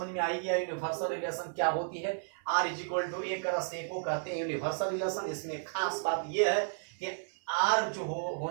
में आई गया यूनिवर्सल रिलेशन क्या होती है। R = A + A को कहते हैं यूनिवर्सल रिलेशन। इसमें खास बात यह है कि R जो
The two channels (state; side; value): silent; left; 56 dB below the other